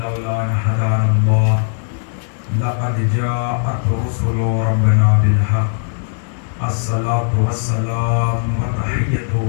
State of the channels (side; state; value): right; silent; digital silence